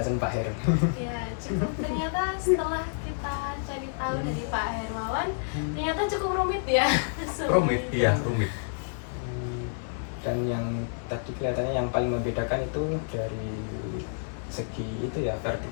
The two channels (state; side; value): silent; right; 58 dB below the other